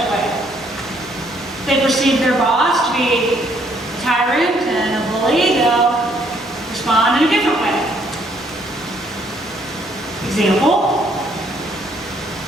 a way. If they perceive their boss to be a tyrant and a bully, they'll respond in a different way. Example,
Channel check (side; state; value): both; normal; correlation 0.67